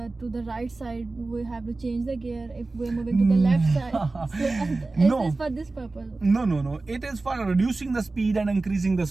the right side, we have to change the gear. If we're moving to the left side, so, No. is this for this purpose? No. It is for reducing the speed and increasing the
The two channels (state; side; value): quieter; left; 3.4 dB